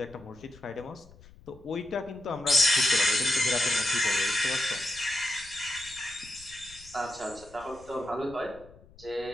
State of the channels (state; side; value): noise; left; rumble, 23 dB below the sound